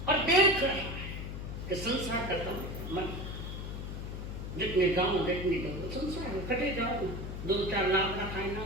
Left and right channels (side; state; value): left; noise; hum, 6 dB below the sound